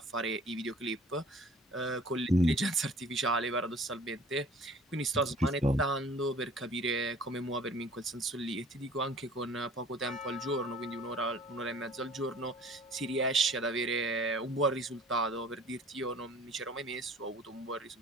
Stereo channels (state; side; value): normal; both; correlation 0.50